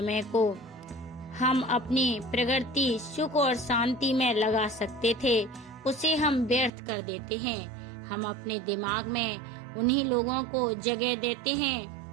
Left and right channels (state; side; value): drops out; left; at 6.7 s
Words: को हम अपनी प्रगति, सुख और शांति में लगा सकते थे, उसे हम व्यर्थ कर देते हैं। हम अपने दिमाग में उन्हीं लोगों को जगह देते